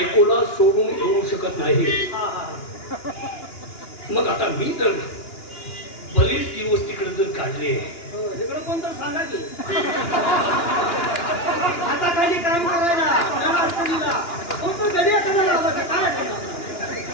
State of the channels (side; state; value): right; late; 2.9 ms